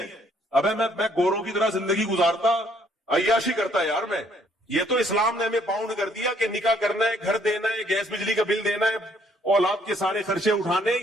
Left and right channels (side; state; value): both; normal; correlation 0.65